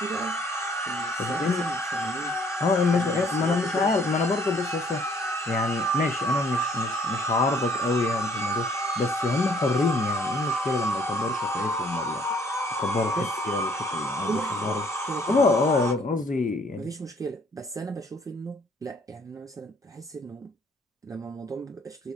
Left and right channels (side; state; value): both; normal; correlation 0.61